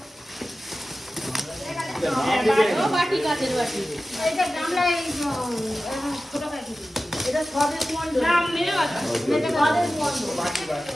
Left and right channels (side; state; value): both; normal; correlation 0.95